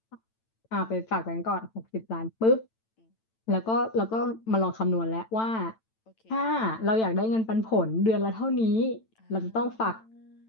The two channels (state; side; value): late; right; 9.0 ms